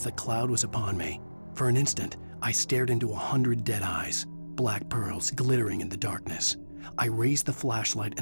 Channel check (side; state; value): both; inverted; correlation -1.00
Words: the cloud was upon me. For an instant, I stared into 100 dead eyes, black pearls glittering in the darkness. I raised the flashlight